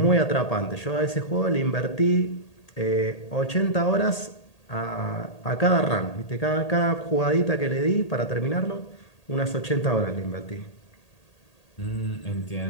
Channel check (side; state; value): right; late; 1.8 ms